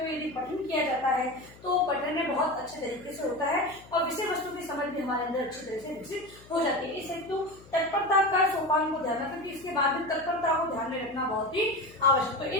हुए यदि पठन किया जाता है तो पठन में बहुत अच्छे तरीके से होता है और विषय वस्तु की समझ भी हमारे अंदर अच्छी तरह से विकसित हो जाती है। इस हेतु तत्परता का सोपान को ध्यान रखना, क्योंकि इसके बाद में तत्परता को ध्यान में रखना बहुत ही आवश्यक। तो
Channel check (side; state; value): left; noise; hum, 22 dB below the sound